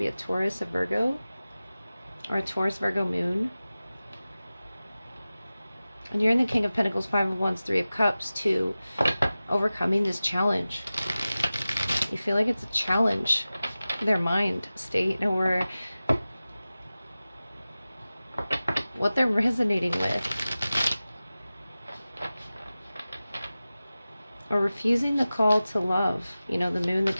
be a Taurus, a Virgo, or a Taurus, Virgo moon. And you're in the King of Pentacles, Five of Wands, Three of Cups, to overcoming this challenge. You feel like it's a challenge, their mind state, or what they're resonating with, or refusing the call to love. You know, the Moon, the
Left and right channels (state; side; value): inverted; both; correlation -0.96